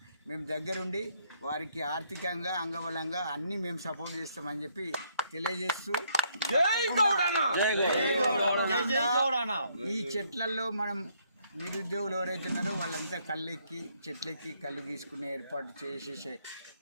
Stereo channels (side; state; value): both; inverted; correlation -0.69